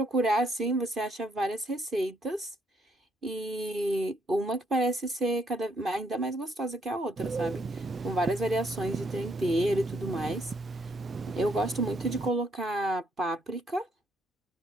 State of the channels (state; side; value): normal; both; correlation 0.72